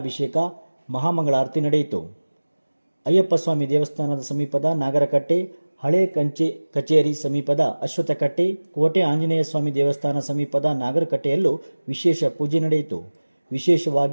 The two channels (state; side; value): inverted; both; correlation -1.00